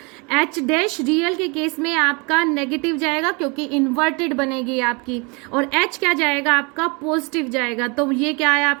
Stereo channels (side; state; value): left; quieter; 30.3 dB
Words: h डैश रियल के केस में आपका नेगेटिव जाएगा क्योंकि इन्वर्टेड बनेगी आपकी, और h क्या जाएगा आपका पॉजिटिव जाएगा। तो ये क्या है